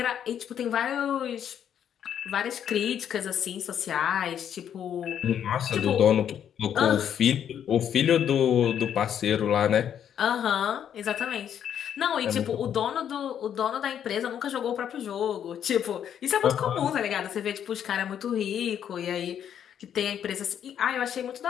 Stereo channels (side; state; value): right; quieter; 9.2 dB